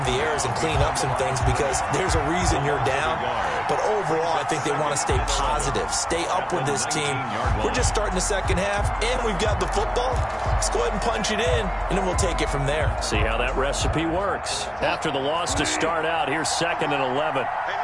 the errors and clean up some things because there's a reason you're down. But overall, I think they want to stay positive, stay up with this team. We're just starting the second half, and we've got the football. Let's go ahead and punch it in, and then we'll take it from there. See how that recipe works. After the loss to start out, here's 2nd and 11.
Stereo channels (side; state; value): both; identical; correlation 1.00